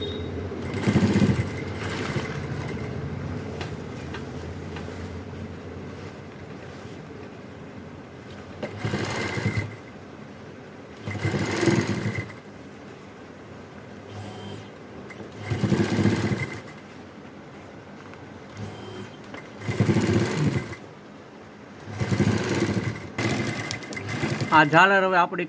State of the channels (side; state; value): both; identical; correlation 1.00